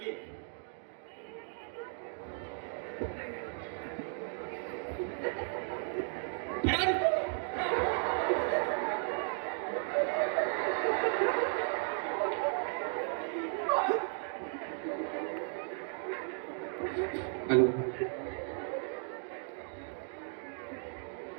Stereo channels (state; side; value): silent; left; 54 dB below the other